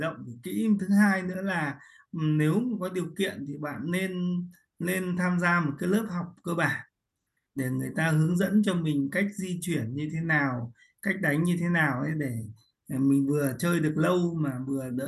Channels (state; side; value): identical; both; correlation 1.00